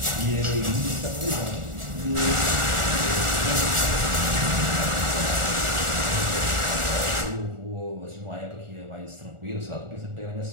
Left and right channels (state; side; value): late; left; 1.4 ms